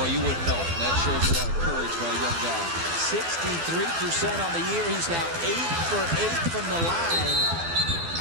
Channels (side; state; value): left; late; 12 ms